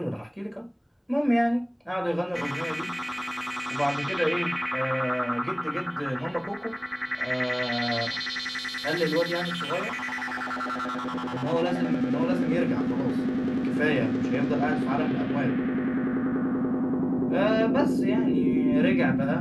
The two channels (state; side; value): identical; both; correlation 1.00